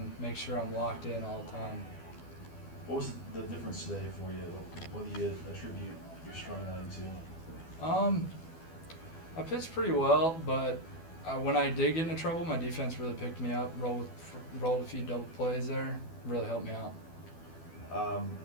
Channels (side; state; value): right; late; 12 ms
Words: make sure I'm locked in all the time. What was the difference today for you? What do you attribute your strong outing to? I pitched pretty well, but when I did get into trouble, my defense really picked me up, rolled a few double plays there, really helped me out.